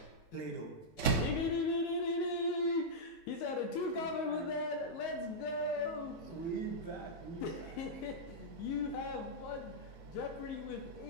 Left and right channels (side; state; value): right; late; 19 ms